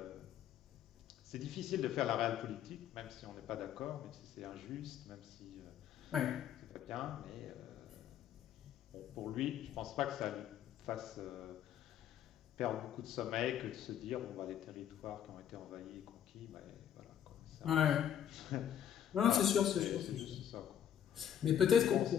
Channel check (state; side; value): quieter; right; 9.8 dB